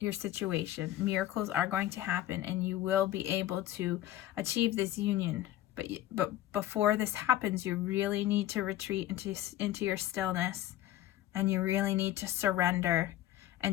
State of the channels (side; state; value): right; quieter; 13.8 dB